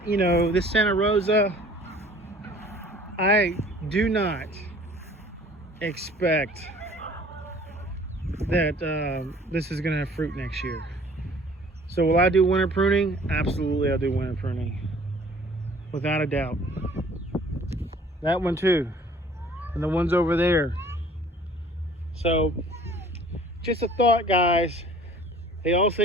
You know, this Santa Rosa, I do not expect that this is gonna have fruit next year. So will I do winter pruning? Absolutely, I'll do winter pruning, without a doubt. That one too, and the ones over there. So just a thought, guys. They all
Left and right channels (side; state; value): both; normal; correlation 0.52